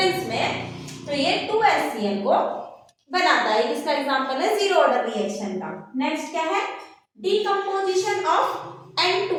में, तो ये 2HCl को बनाता है। इसका एग्जांपल है जीरो ऑर्डर रिएक्शन का। नेक्स्ट क्या है, decomposition of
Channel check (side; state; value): both; identical; correlation 1.00